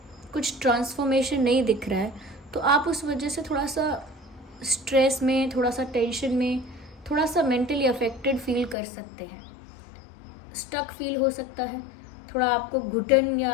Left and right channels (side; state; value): right; drops out; at 8.8 s